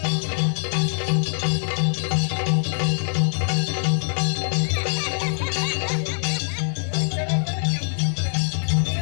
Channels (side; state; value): right; silent; 59 dB below the other